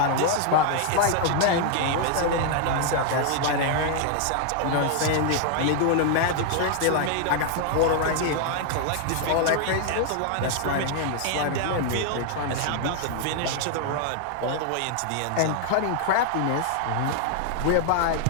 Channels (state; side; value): different; both; correlation 0.00